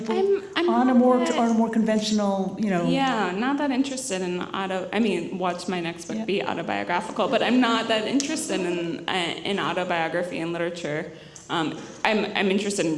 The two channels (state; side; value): identical; both; correlation 1.00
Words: I'm on a not more that- on a more conventional, Yeah, not that interested in watch my next book be autobiographical, but I'm not that interested in autobiography and literature. I'm interested in